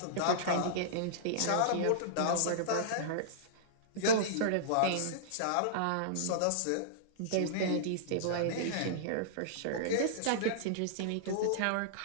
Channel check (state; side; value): different; both; correlation -0.02